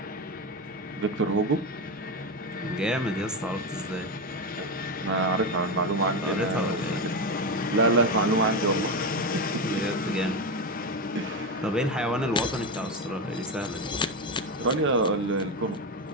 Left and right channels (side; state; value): both; normal; correlation 0.14